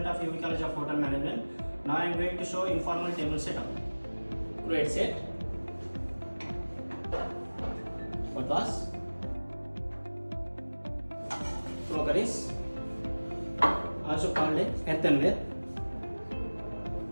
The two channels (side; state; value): both; inverted; correlation -1.00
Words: of UVCHM of Hotel Management. Now I am going to show informal table setup. Create set. What was? Crockeries, also called earthenware.